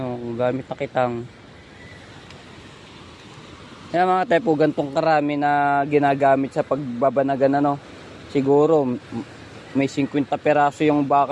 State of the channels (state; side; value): identical; both; correlation 1.00